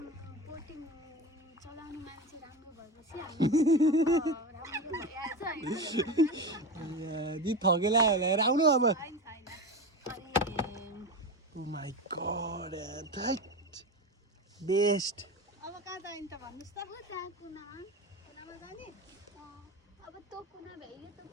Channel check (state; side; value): normal; both; correlation 0.24